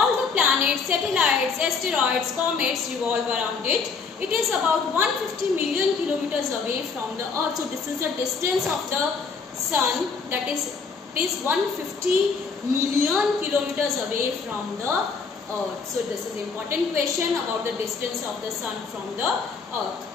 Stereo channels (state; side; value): quieter; right; 5.0 dB